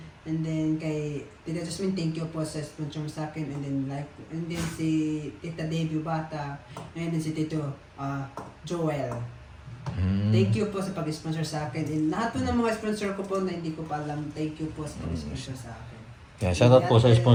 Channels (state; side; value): identical; both; correlation 1.00